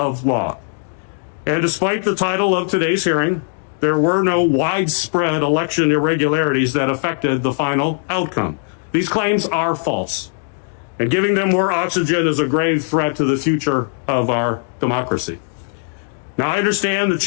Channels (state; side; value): silent; right; 67 dB below the other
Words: law. And despite the title of today's hearing, there were no widespread election irregularities that affected the final outcome. These claims are false, and giving them more oxygen is a grave threat to the future of our democracy. Now, I understand the